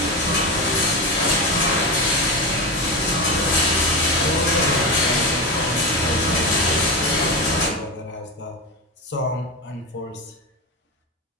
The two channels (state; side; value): normal; both; correlation 0.18